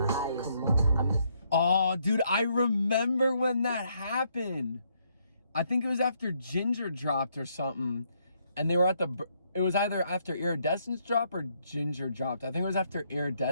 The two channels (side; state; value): both; inverted; correlation -0.73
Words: highest. Oh, dude, I remember when that happened. I think it was after Ginger dropped or something, and they were at it was either after Iridescence dropped or Ginger dropped. I think it was after